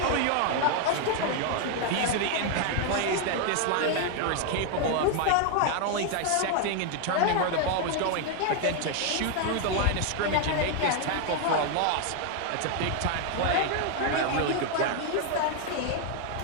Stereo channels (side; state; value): both; different; correlation 0.00